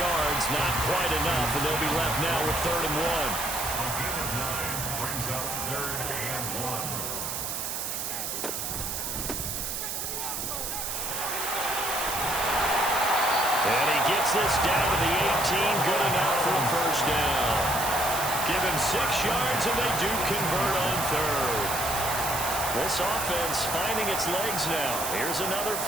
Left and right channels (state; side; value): noise; right; hiss, 3 dB below the sound